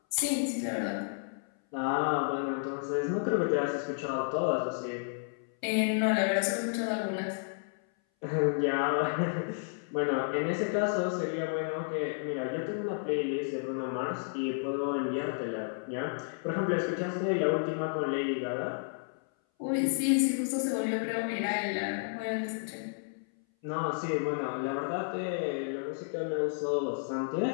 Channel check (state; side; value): silent; right; 57 dB below the other